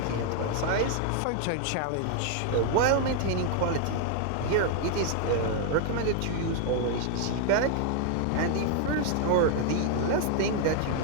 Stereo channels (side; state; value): both; different; correlation 0.00